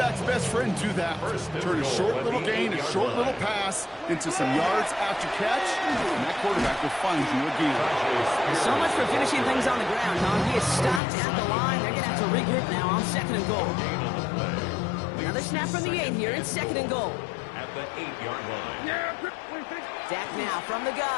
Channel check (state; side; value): drops out; right; at 11.0 s